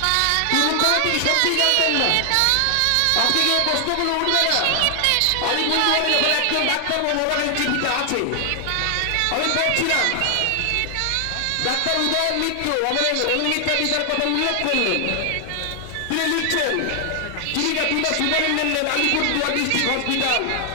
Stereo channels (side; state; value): both; different; correlation 0.00